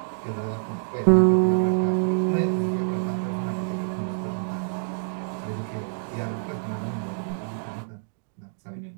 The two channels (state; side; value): silent; left; digital silence